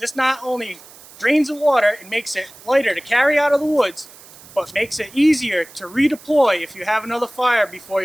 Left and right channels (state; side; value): noise; right; hiss, 21 dB below the sound